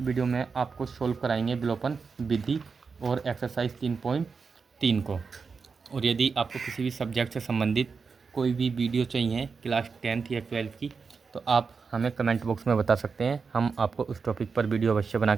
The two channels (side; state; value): left; quieter; 5.1 dB